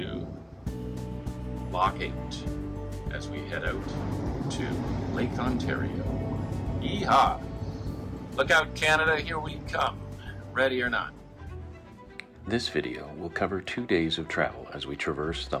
Lock 8 as we head out to Lake Ontario. Yeehaw! Look out, Canada, here we come, ready or not. This video will cover 2 days of travel as we traverse the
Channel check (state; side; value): identical; both; correlation 1.00